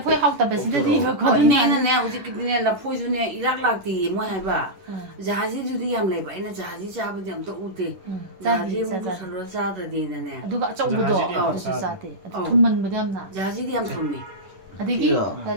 포에 하우다 베스데디 이거 Ko ne na ne hu ji ki ne la phoi ju ne irak lak ti mo hai ba. Jahazi ju di yam lai ba ina jahazi cha ba jam to u te. Jahazi mu du san ro cha da de na ne. 누가 어쩌고도 어디서 싸대 돈만 무렴나 Jahazi di yam thum ni. ꯑꯗꯒꯤ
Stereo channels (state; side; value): late; left; 10 ms